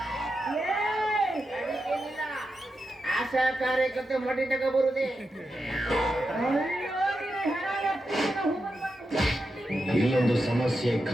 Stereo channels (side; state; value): both; normal; correlation 0.88